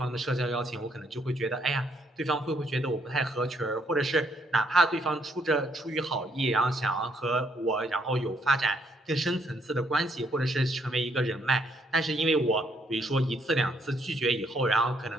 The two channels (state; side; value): normal; both; correlation 0.71